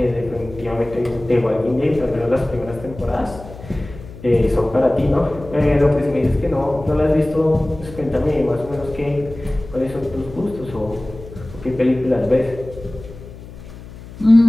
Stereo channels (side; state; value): left; noise; hum, 16 dB below the sound